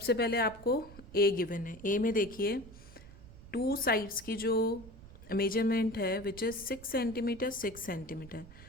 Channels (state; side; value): noise; right; rumble, 18 dB below the sound